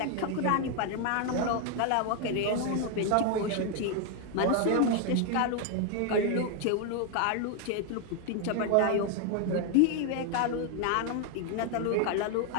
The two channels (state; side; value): different; both; correlation 0.00